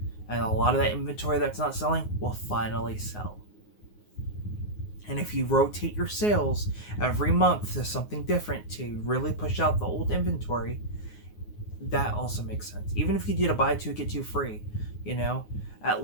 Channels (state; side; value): late; right; 9.6 ms